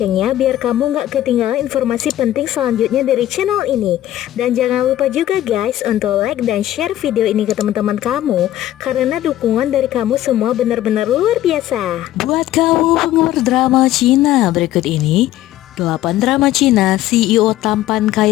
biar kamu nggak ketinggalan informasi penting selanjutnya dari channel ini. Dan jangan lupa juga guys untuk like dan share video ini ke teman-teman kamu, karena dukungan dari kamu semua benar-benar luar biasa. Buat kamu penggemar drama Cina, berikut ini 8 drama Cina CEO tampan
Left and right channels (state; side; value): quieter; right; 13.6 dB